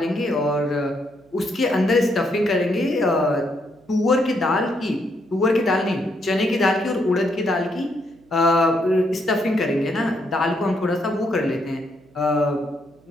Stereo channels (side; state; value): right; noise; hum, 29 dB below the sound